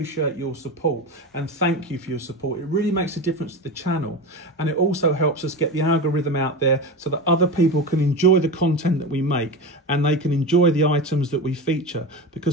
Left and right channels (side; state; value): both; normal; correlation 0.24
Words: your support and thank you for your support. It really makes a difference to the channel, and it also helps us get the algorithm out there so that other people can enjoy the content that we make and they can enjoy the items that we feature,